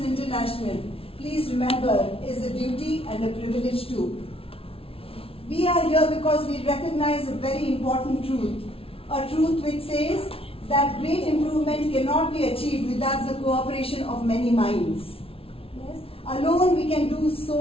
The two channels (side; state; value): right; late; 0.27 ms